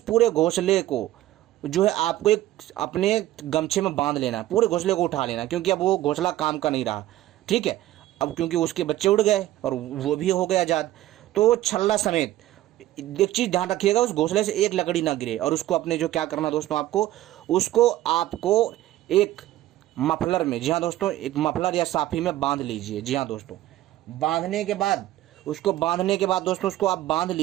पूरे घोंसले को जो है आपको एक अपने गमछे में बांध लेना है, पूरे घोंसले को उठा लेना, क्योंकि अब वो घोंसला काम का नहीं रहा, ठीक है। अब क्योंकि उसके बच्चे उड़ गए और वो भी हो गए आजाद, तो छल्ला समेत एक चीज ध्यान रखिएगा, उस घोंसले से एक लकड़ी ना गिरे। और उसको अपने जो क्या करना दोस्तों, आपको एक मफलर में, जी हाँ दोस्तों, एक मफलर या साफी में बांध लीजिए। जी हाँ दोस्तों, बांधने के बाद दोस्तों उसको आप बांध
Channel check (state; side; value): quieter; left; 14.7 dB